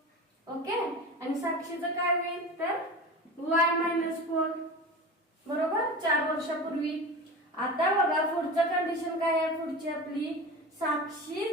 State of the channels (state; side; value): normal; both; correlation 0.31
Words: ओके. आणि साक्षीचं काय होईल, तर y -4, बरोबर, 4 वर्षापूर्वी. आता बघा पुढचं कंडिशन काय आहे, पुढची आपली,